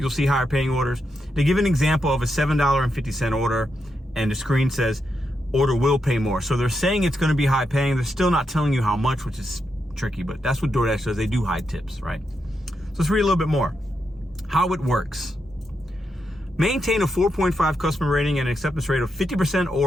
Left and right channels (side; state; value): both; normal; correlation 0.84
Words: see higher paying orders. They give an example of a $7.50 order, and the screen says order will pay more. So they're saying it's going to be high paying. They're still not telling you how much, which is tricky, but that's what DoorDash does. They do high tips, right? So let's read a little bit more. How it works. Maintain a 4.5 customer rating and an acceptance rate of 50%